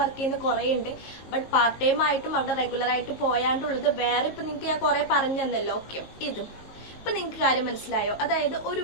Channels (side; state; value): right; late; 19 ms